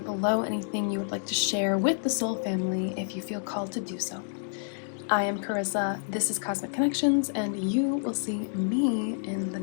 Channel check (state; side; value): silent; right; digital silence